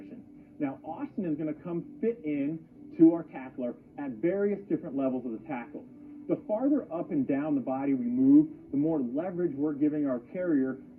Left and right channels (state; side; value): identical; both; correlation 1.00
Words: Now, Austin is going to come fit in to our tackler at various different levels of the tackle. The farther up and down the body we move, the more leverage we're giving our carrier